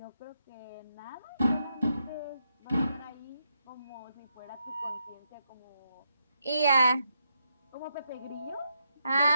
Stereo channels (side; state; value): both; inverted; correlation -0.81